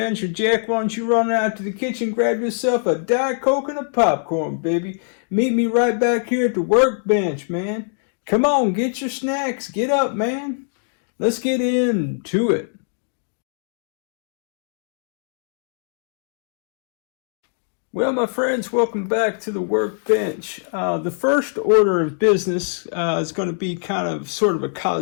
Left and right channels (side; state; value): right; silent; digital silence